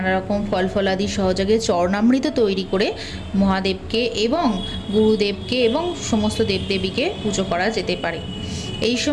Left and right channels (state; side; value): identical; both; correlation 1.00